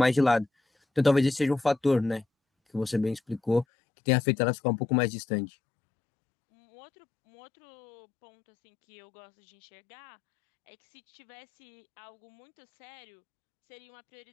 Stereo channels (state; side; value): drops out; right; at 3.7 s